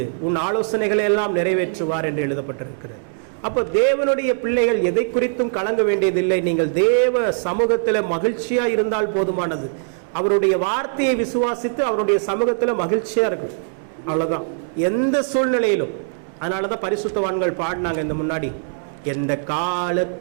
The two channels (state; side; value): silent; left; digital silence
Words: உன் ஆலோசனைகளை எல்லாம் நிறைவேற்றுவார் என்று எழுதப்பட்டிருக்கிறது. அப்போ தேவனுடைய பிள்ளைகள் எதை குறித்தும் கலங்க வேண்டியதில்லை. நீங்கள் தேவ சமூகத்தில் மகிழ்ச்சியா இருந்தால் போதுமானது. அவருடைய வார்த்தையை விசுவாசித்து அவருடைய சமூகத்தில் மகிழ்ச்சியா இருக்கும். அவ்வளவுதான், எந்த சூழ்நிலையிலும். அதனாலதான் பரிசுத்தவான்கள் பாடினாங்க இந்த முன்னாடி, எந்த